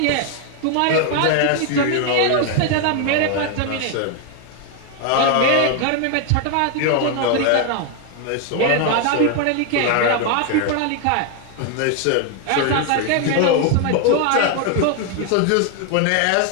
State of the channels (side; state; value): both; different; correlation 0.00